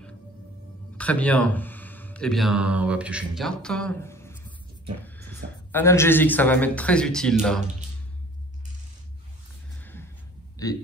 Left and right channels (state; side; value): normal; both; correlation 0.49